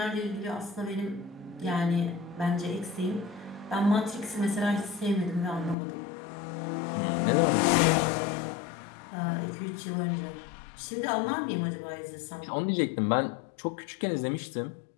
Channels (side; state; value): right; drops out; at 5.8 s